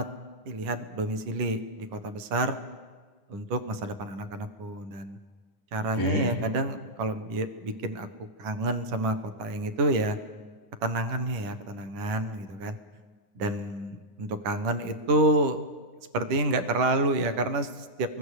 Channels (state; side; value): late; left; 9.9 ms